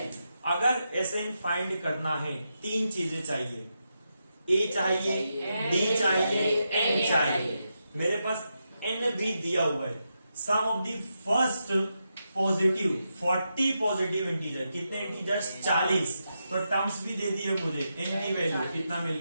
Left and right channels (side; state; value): both; inverted; correlation -0.86